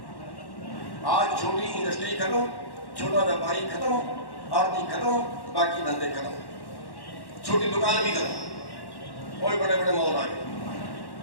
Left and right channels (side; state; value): right; late; 1.1 ms